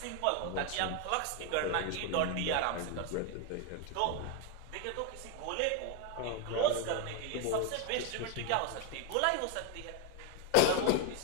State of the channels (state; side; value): different; both; correlation 0.02